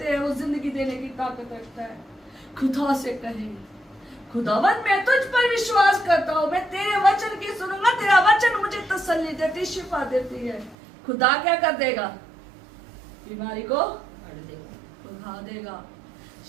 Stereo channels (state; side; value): drops out; left; at 10.8 s